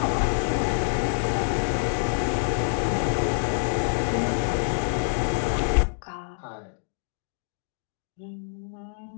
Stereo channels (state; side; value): silent; right; digital silence